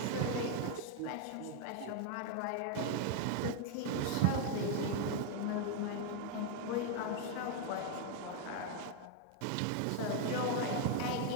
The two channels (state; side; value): different; both; correlation 0.00